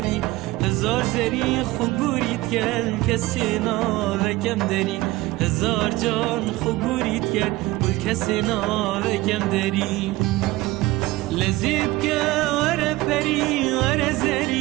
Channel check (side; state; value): left; quieter; 19.2 dB